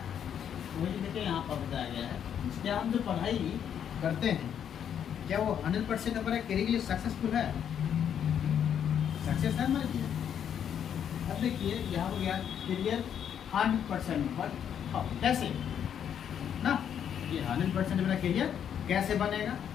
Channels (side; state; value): right; quieter; 8.8 dB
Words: तो वही देखिए यहाँ पर बताया गया है, क्या हम जो पढ़ाई करते हैं क्या वो 100% हमारे करियर के लिए सक्सेसफुल है, सक्सेस है हमारे लिए। अब देखिए यहाँ हो गया करियर 100%, बट कैसे ना, ये 100% मेरा करियर कैसे बनेगा